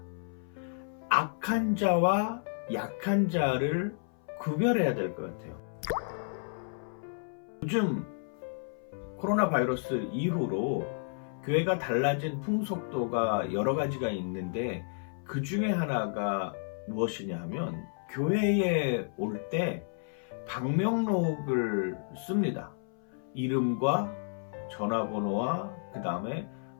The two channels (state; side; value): silent; right; 57 dB below the other